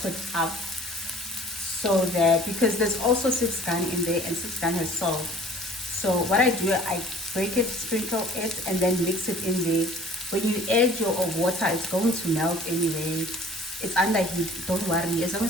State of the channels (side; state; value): both; normal; correlation 0.50